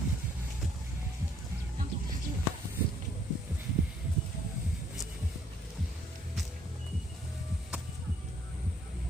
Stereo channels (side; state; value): both; normal; correlation 0.65